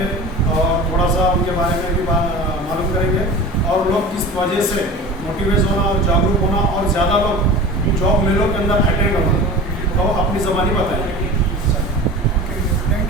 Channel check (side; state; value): both; normal; correlation 0.36